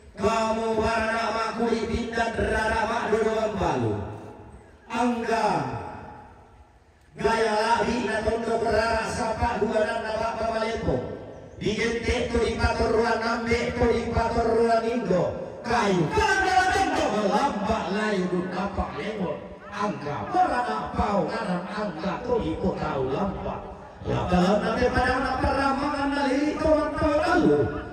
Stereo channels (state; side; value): identical; both; correlation 1.00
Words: kamu warna makuli pindah rara mak dodoan balu angga gaya lahi na tondo kerara sapa dua nanda bapa malepo digente to ipator ruan ambe to ipator ruan indo kayu kada tondo lambak layu dun apa lemot angga berana pau kanan angga to iko tahu lambak dalam nanti pada peramangan naliri kawan tahu lalu